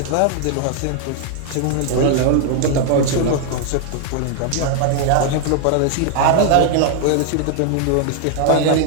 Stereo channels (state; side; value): different; both; correlation 0.00